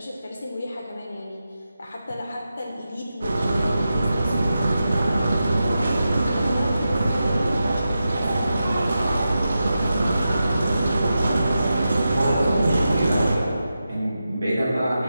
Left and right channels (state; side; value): inverted; both; correlation -0.90